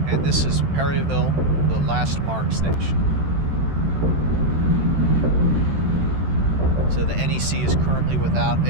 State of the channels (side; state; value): left; late; 13 ms